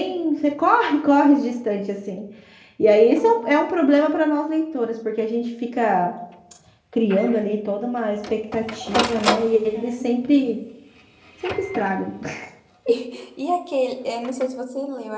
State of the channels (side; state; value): both; identical; correlation 1.00